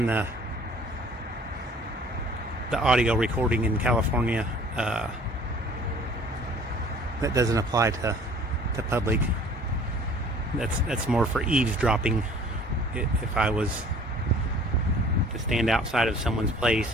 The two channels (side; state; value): both; normal; correlation 0.51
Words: the audio recording in California. That doesn't apply to public. That's more for eavesdropping. If I was to stand outside of someone's